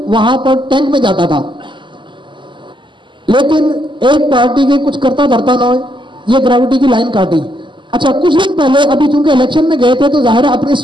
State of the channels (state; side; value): late; left; 0.24 ms